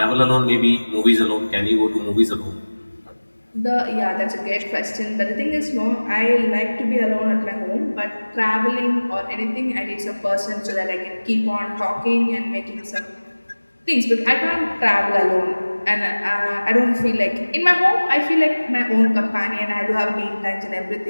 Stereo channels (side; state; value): both; inverted; correlation -1.00